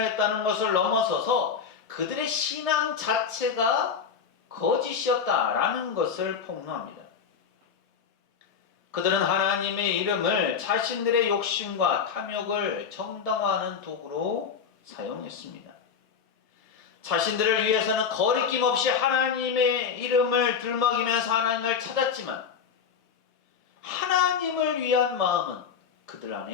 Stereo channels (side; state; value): right; quieter; 6.6 dB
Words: 했다는 것을 넘어서서 그들의 신앙 자체가 거짓이었다라는 것을 폭로합니다. 그들은 하나님의 이름을 자신들의 욕심과 탐욕을 정당화하는 도구로 사용했습니다. 자신들을 위해서는 거리낌 없이 하나님의 이름을 들먹이면서 하나님을 찾았지만 하나님을 위한 마음은 그들